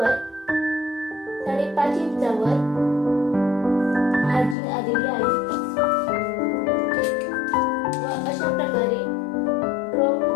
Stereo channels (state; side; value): drops out; right; at 4.5 s